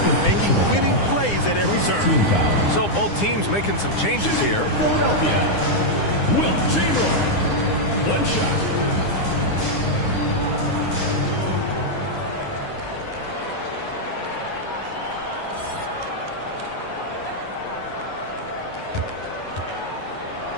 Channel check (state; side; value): late; right; 9.8 ms